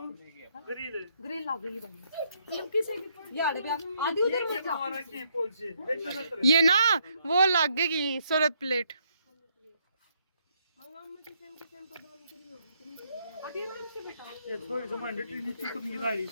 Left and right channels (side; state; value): both; inverted; correlation -0.72